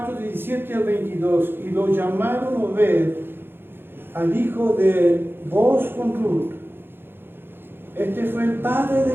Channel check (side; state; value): left; late; 0.10 ms